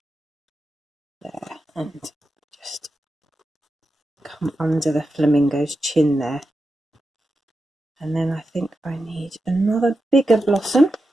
there and just come under the flamingo's chin there. And then I think I need another bigger blossom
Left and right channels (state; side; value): normal; both; correlation 0.90